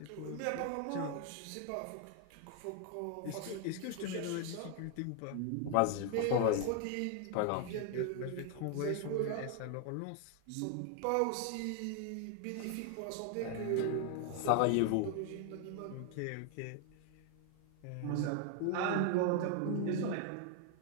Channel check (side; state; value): both; different; correlation 0.00